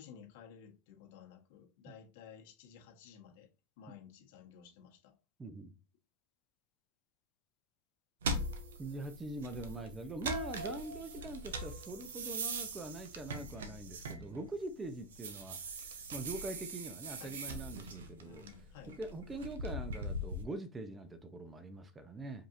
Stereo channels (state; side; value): normal; both; correlation 0.04